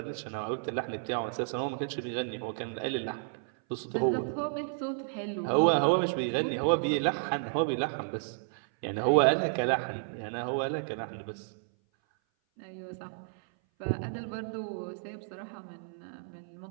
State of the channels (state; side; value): silent; left; 56 dB below the other